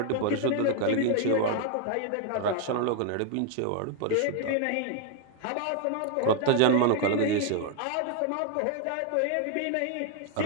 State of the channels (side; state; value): both; different; correlation 0.00